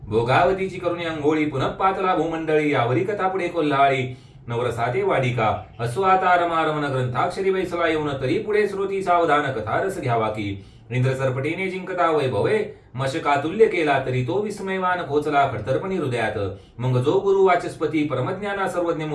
भोगावतीची करुणी अंघोळी पुनः पातला भूमंडळी यावरी कथा पुढे कोल्हाळी. नवरसाते वाडिका असो आता रमारमन ग्रंथाक्षरी बैसला येऊन तरी पुढे श्रोती सावधान कथा रस घ्यावा की. इंद्र सरपटीने जिंकता वैभवे मशकातुल्य केला तरी तो विस्मयवान पोचला खडतरपणी हृदयात. मग जो गुरु वाचस्पती परमज्ञाना सर्वज्ञ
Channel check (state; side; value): identical; both; correlation 1.00